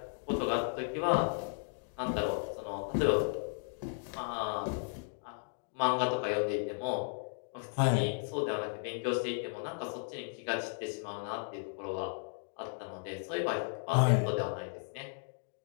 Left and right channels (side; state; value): right; silent; digital silence